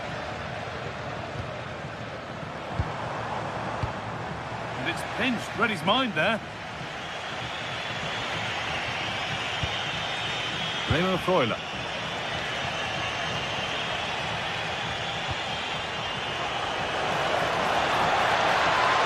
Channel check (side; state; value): both; identical; correlation 1.00